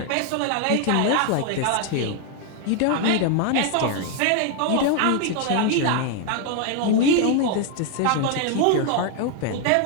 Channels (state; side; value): different; both; correlation 0.01